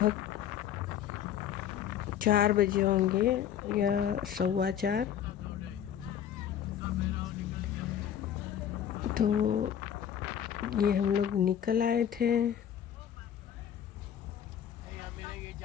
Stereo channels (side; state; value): right; quieter; 9.4 dB